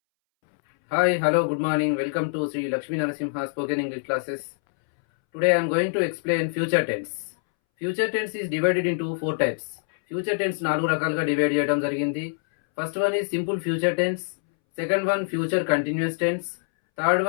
hello, good morning. Welcome to Sri Lakshmi Narasimha Spoken English classes. Today I am going to explain future tense. Future tense is divided into 4 types. Future tense 4 రకాలుగా divide చేయడం జరిగింది. First one is simple future tense, second one future continuous tense, third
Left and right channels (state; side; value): silent; right; 62 dB below the other